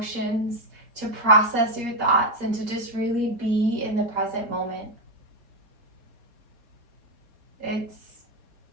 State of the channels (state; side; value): late; left; 4.2 ms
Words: to process your thoughts, and to just really be in the present moment.